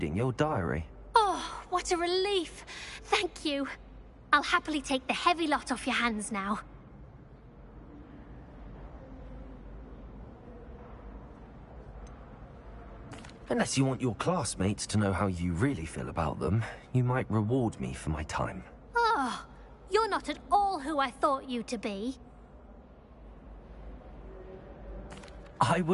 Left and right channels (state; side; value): identical; both; correlation 1.00